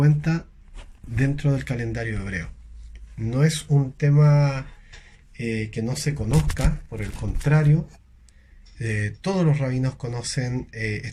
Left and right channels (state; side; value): identical; both; correlation 1.00